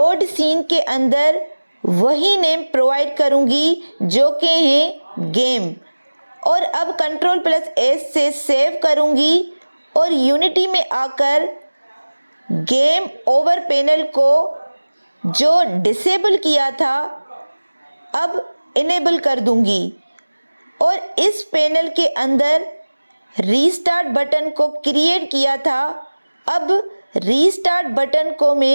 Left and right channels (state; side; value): inverted; both; correlation -1.00